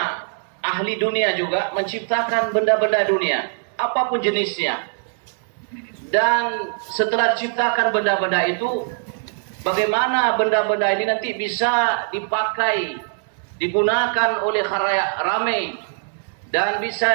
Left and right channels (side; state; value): left; silent; digital silence